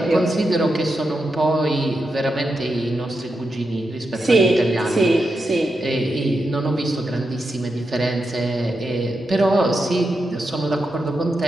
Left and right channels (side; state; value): both; normal; correlation 0.86